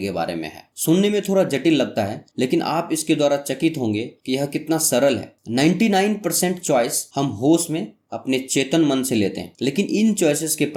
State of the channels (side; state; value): both; identical; correlation 1.00